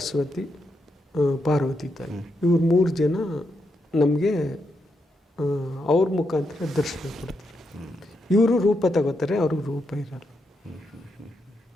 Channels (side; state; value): both; normal; correlation 0.82